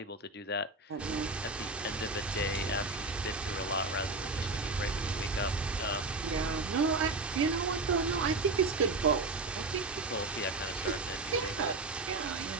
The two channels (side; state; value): left; quieter; 3.3 dB